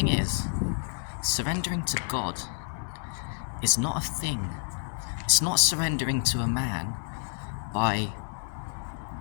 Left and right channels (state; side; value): silent; right; digital silence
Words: is, surrendering to God is not a thing. It's not surrendering to a man by